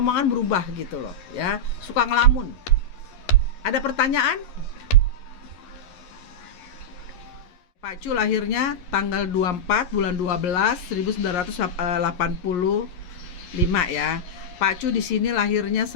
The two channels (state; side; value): late; right; 11 ms